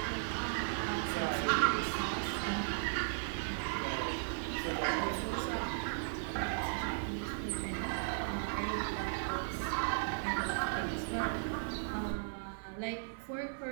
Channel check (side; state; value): left; silent; digital silence